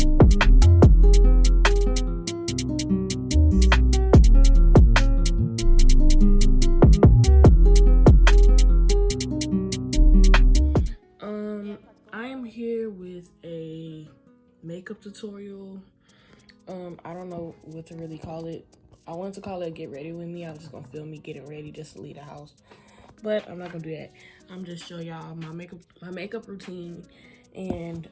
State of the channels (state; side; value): identical; both; correlation 1.00